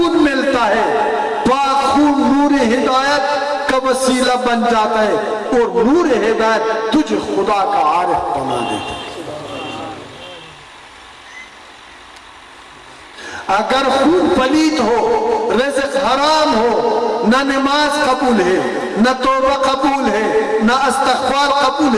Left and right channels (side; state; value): both; identical; correlation 1.00